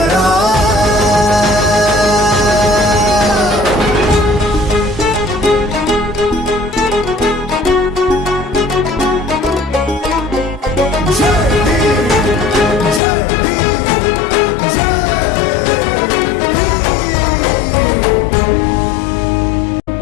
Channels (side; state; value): right; drops out; at 13.0 s